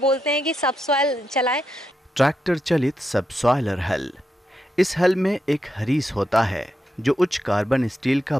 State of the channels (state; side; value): normal; both; correlation 0.84